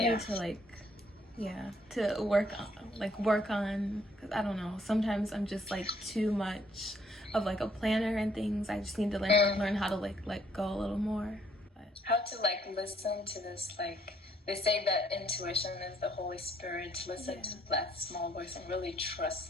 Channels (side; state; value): both; normal; correlation 0.67